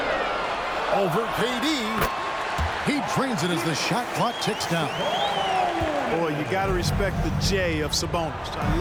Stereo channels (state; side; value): identical; both; correlation 1.00